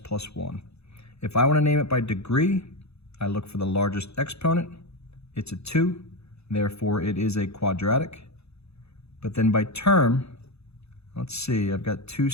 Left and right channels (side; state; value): right; late; 0.79 ms